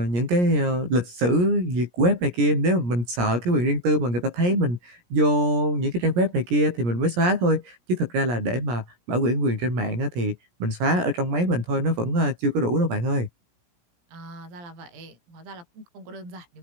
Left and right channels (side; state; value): left; late; 17 ms